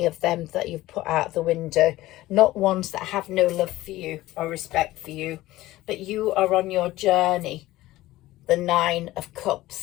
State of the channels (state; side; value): quieter; right; 16.9 dB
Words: of them that you've put out the window, not ones that have no love for you or respect for you. But you are on your journey, the 9 of